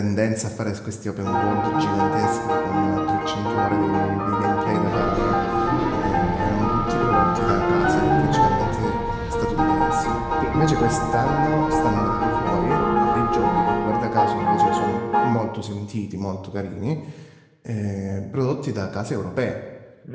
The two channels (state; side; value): identical; both; correlation 1.00